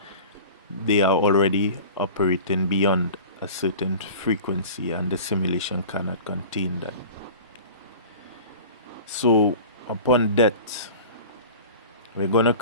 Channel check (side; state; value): both; inverted; correlation -0.39